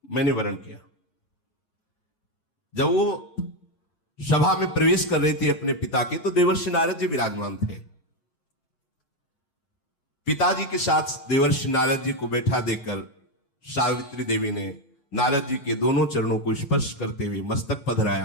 मैंने वरण किया। जब वो सभा में प्रवेश कर रही थी अपने पिता के, तो देवर्षि नारद जी विराजमान थे। पिताजी के साथ देवर्षि नारद जी को बैठा देखकर सावित्री देवी ने नारद जी के दोनों चरणों को स्पर्श करते हुए मस्तक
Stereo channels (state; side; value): late; right; 7.3 ms